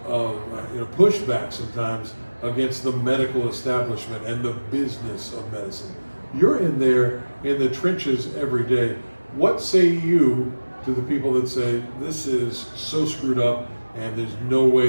pushback sometimes against the medical establishment and the business of medicine. You're in there in the trenches every day. What say you to the people that say this is so screwed up and there's no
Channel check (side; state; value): both; inverted; correlation -1.00